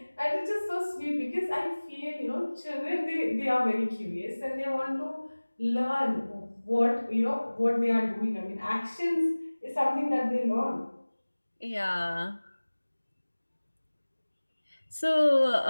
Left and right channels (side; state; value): both; inverted; correlation -1.00